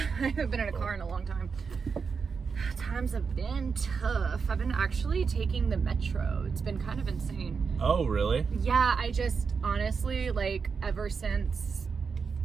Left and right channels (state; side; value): quieter; left; 5.5 dB